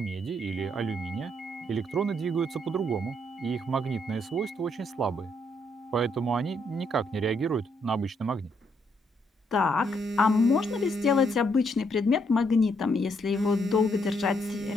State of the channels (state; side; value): normal; both; correlation 0.73